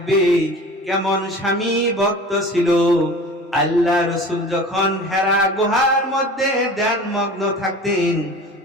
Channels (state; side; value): normal; both; correlation 0.39